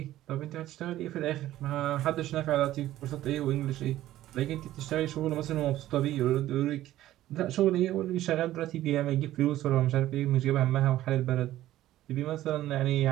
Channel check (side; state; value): left; quieter; 14.2 dB